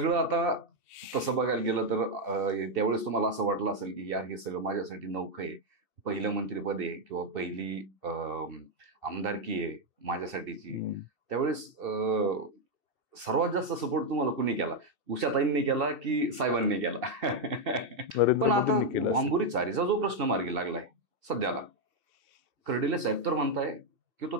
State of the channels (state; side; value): late; left; 2.7 ms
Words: आता तसं बघायला गेलं तर त्यावेळेस तुम्हाला असं वाटलं असेल की यार हे सगळं माझ्यासाठी नवखं आहे. पहिलं मंत्रिपद आहे किंवा पहिली आमदारकी आहे माझ्यासाठीची. त्यावेळेस सर्वात जास्त सपोर्ट तुम्हाला कुणी केला? उषाताईंनी केला की साहेबांनी केला? पण आता वांबुरी चारीचा जो प्रश्न मार्गी लागलाय सध्याला, कर्डिले साहेब तर म्हणताय की तो